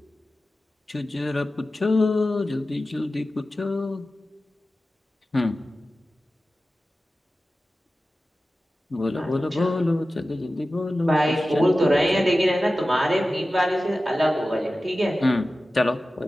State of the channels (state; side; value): normal; both; correlation 0.95